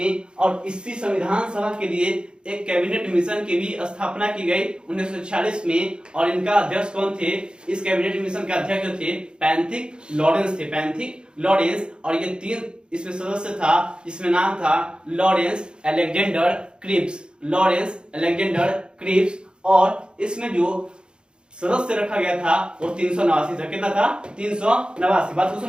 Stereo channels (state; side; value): late; left; 0.051 ms